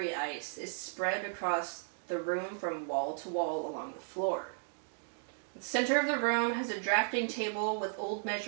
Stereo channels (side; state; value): left; silent; digital silence